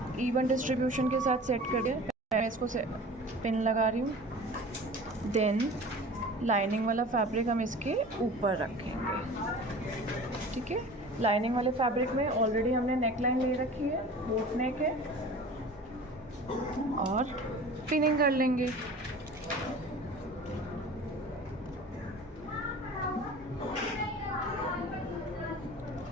इवन डिस्ट्रीब्यूशन के साथ सेट कर दिया। मैं इसको पिन लगा रही हूँ। देन लाइनिंग वाला फैब्रिक हम इसके ऊपर रखेंगे। ठीक है, लाइनिंग वाले फैब्रिक में ऑलरेडी हमने नेक लाइन ले रखी है, बोट नेक है, और पिनिंग कर लेंगे।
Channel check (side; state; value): both; normal; correlation 0.40